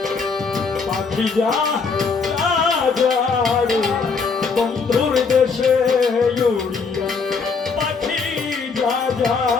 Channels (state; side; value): quieter; right; 5.0 dB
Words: পাখি যা যা রে বন্ধুর দেশে উড়িয়া পাখি যা যা